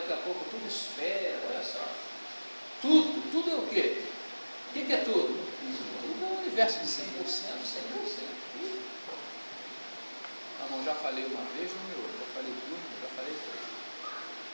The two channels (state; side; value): inverted; both; correlation -1.00